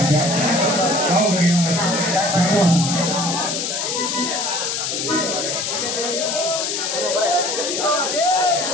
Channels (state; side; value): noise; left; hiss, 2 dB below the sound